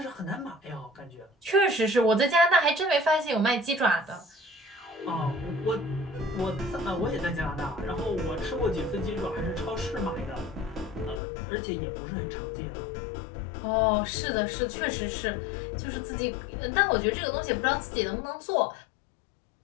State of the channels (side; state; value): right; drops out; at 11.2 s